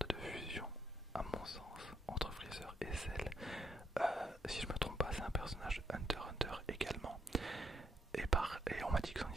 de fusion, à mon sens, entre Freezer et Cell. Si je me trompe pas, c'est un personnage Hunter x Hunter également. Et on m'a dit que son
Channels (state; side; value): normal; both; correlation 0.77